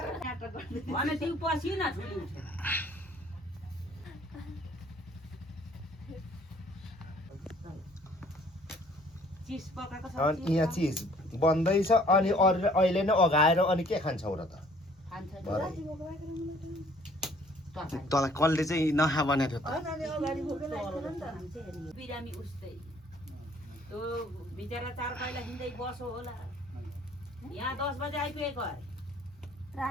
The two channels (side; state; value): both; normal; correlation 0.58